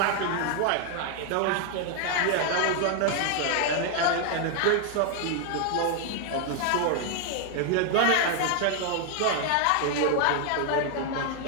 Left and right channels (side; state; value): both; different; correlation 0.00